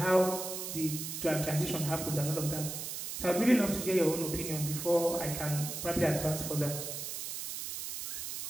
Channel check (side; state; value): right; noise; hiss, 6 dB below the sound